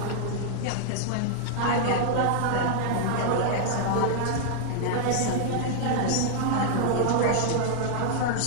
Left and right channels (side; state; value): both; different; correlation -0.01